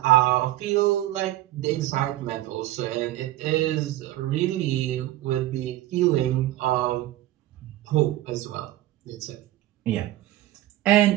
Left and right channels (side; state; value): left; quieter; 15.0 dB